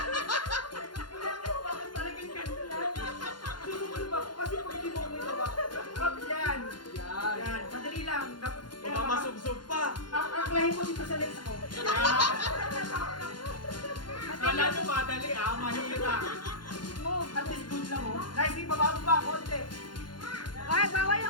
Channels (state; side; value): late; right; 0.71 ms